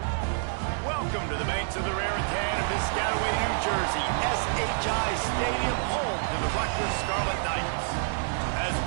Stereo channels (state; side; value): silent; left; digital silence